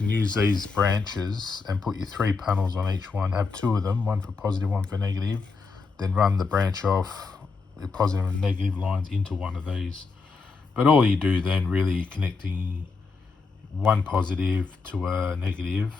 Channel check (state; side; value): quieter; right; 4.5 dB